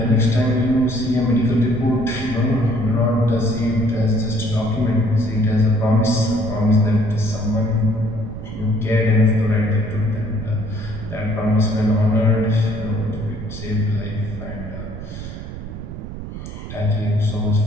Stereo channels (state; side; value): noise; right; rumble, 9 dB below the sound